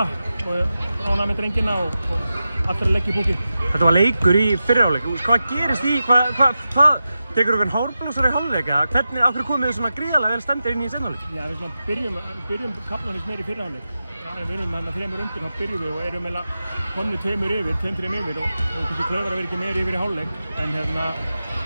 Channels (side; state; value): both; inverted; correlation -0.91